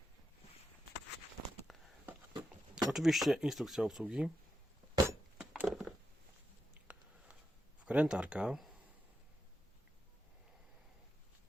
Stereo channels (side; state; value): both; normal; correlation 0.87